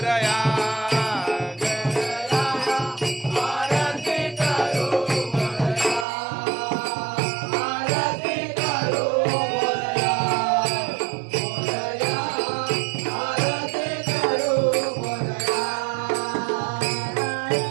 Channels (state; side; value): drops out; left; at 6.1 s